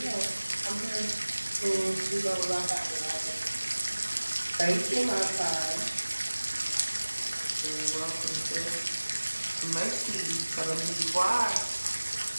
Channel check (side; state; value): both; inverted; correlation -1.00